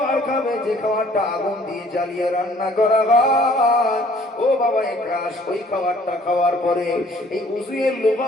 খাবে, যে খাবারটা আগুন দিয়ে জ্বালিয়ে রান্না করা হয়, ও বাবা একরাশ, ওই খাবারটা খাওয়ার পরে এই উযুয়ের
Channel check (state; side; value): normal; both; correlation 0.57